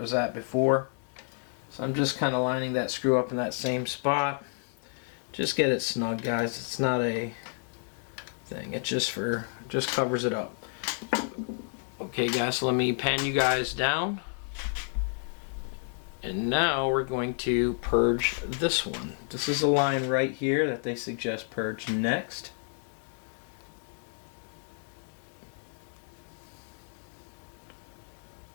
at before. So I'm just kind of lining that screw up in that same spot. Just get it snug, guys. It's not a thing. It's just covers it up. Okay, guys, so let me pan you guys down. And now we're going to purge this one. This is a line right here that they suggest purge next.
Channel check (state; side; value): silent; right; 58 dB below the other